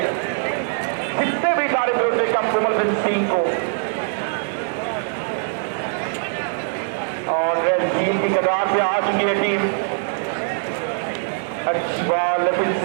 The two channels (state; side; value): silent; left; digital silence